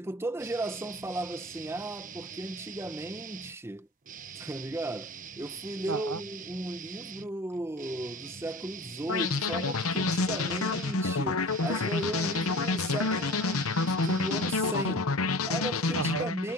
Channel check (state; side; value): normal; both; correlation 0.40